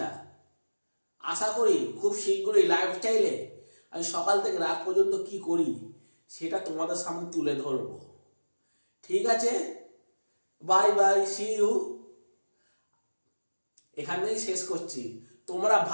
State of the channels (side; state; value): both; inverted; correlation -1.00